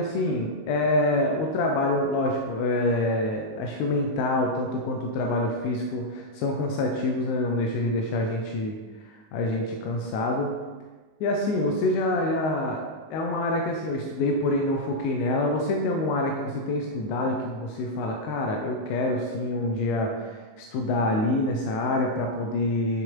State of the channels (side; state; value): right; late; 19 ms